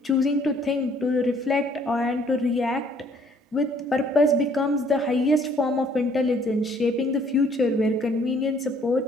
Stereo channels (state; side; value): normal; both; correlation 0.61